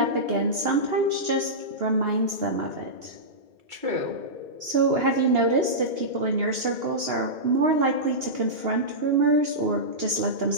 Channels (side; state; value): left; late; 2.8 ms